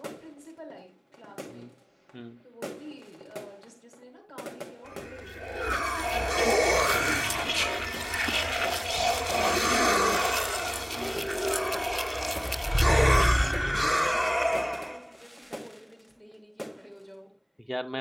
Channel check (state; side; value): identical; both; correlation 1.00